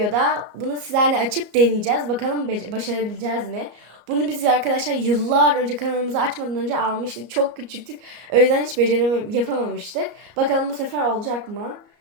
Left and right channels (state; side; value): late; left; 34 ms